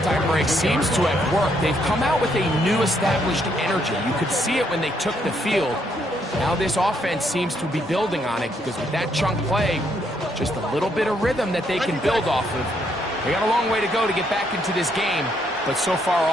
break seems to have worked. They've come out with a new established energy. You could see it when they took the field. Now this offense seems to be building on it because with that chunk play, just a little bit of rhythm that they can build off of. They got a long way to go to get back into this game, but so far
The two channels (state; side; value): normal; both; correlation 0.73